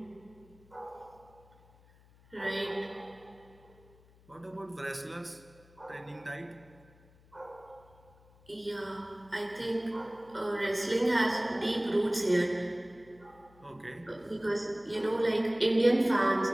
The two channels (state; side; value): noise; left; hum, 27 dB below the sound